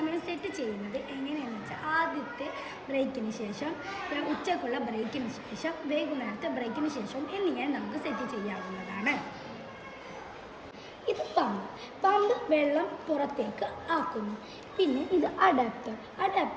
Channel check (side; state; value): both; identical; correlation 1.00